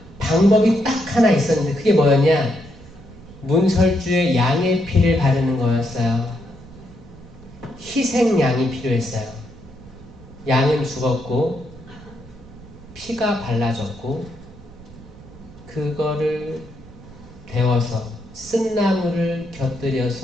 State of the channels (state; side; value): noise; right; rumble, 20 dB below the sound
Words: 방법이 딱 하나 있었는데 그게 뭐였냐? 문설주에 양의 피를 바르는 거였어요. 희생양이 필요했어요. 양은 죽었고 피가 발라졌고 그거를 데워서 쓴나물을